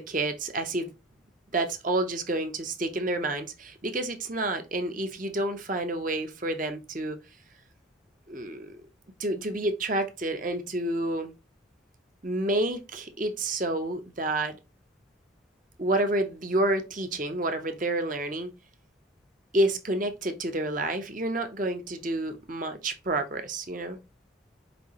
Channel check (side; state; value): both; normal; correlation 0.34